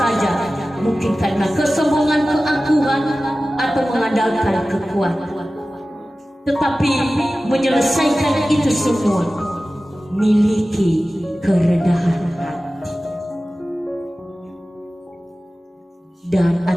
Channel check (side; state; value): both; normal; correlation 0.96